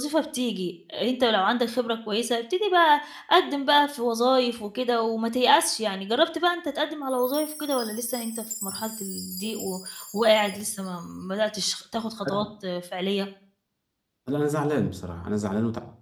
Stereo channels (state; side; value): identical; both; correlation 1.00